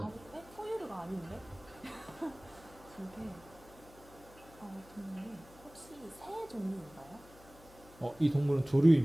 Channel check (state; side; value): noise; left; hum, 22 dB below the sound